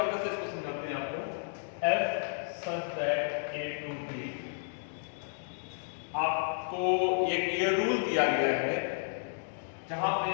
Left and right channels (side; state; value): right; silent; digital silence